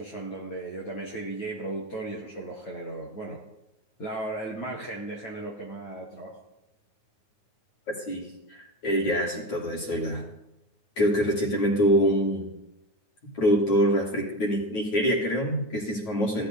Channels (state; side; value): late; right; 9.3 ms